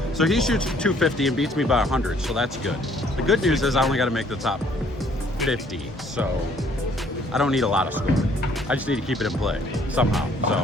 so he shoots 250 and beats me by 100, so that's good. The good news is I only got to make the top 50, so I don't need a lot of scoring. I just need to keep it in play somehow.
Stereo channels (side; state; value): both; normal; correlation 0.62